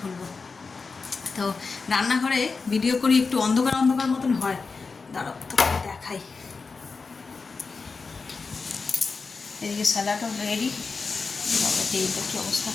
তো রান্নাঘরে ভিডিও করি, একটু অন্ধকার অন্ধকার মতন হয়, দাঁড়াও তো দেখাই। এদিকে স্যালাডও রেডি। তেলটা কী অবস্থা,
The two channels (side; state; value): right; quieter; 4.5 dB